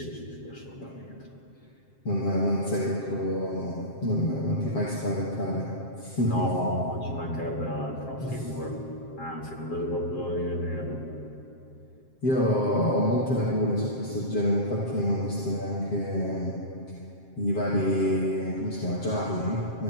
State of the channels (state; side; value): late; right; 7.6 ms